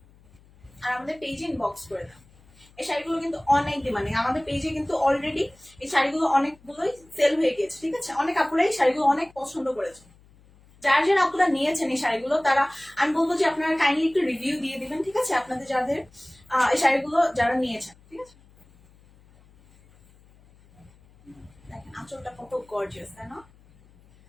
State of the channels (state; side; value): noise; left; hum, 28 dB below the sound